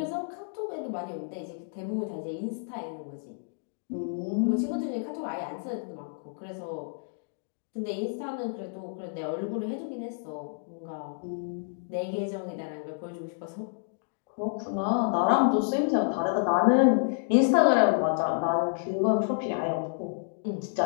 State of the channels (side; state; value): right; silent; digital silence